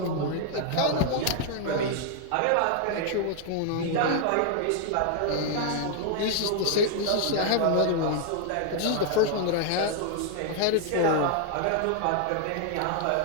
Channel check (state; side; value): different; both; correlation 0.00